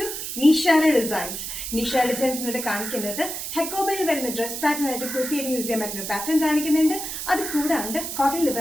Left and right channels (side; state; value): right; noise; hiss, 6 dB below the sound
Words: Nishara designs. Nishara designs എന്നിട്ട് കാണിക്കുന്നത് ഹെക്കോബയിൽ വരുന്ന ഡ്രസ് പാറ്റേൺ ആയിട്ട് കുർത്തിയായിട്ട് യൂസ് ചെയ്യാൻ പറ്റുന്ന പാറ്റേൺ കാണിക്കുന്നുണ്ട്. അത് കൂടാണ്ട് കോട്ടണിൽ